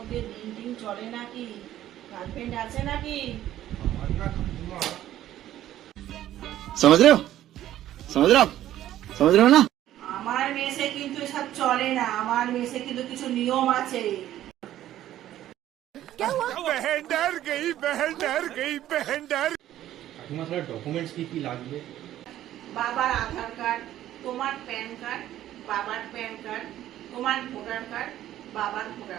দিন চলে নাকি? গার্লফ্রেন্ড আছে নাকি? আমার না কাকিমা। समझ रहे हो समझ रहे हो ना? আমার মেসে কিন্তু এসব চলে না, আমার মেসে কিন্তু কিছু নিয়ম আছে। কাকিমা তাহলে ডকুমেন্টস কি কি লাগবে? বাবার আধার কার্ড, তোমার প্যান কার্ড, বাবার প্যান কার্ড, তোমার ভোটার কার্ড, বাবার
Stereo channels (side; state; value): left; quieter; 12.9 dB